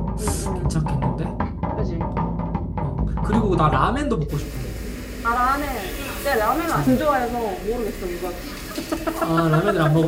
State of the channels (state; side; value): identical; both; correlation 1.00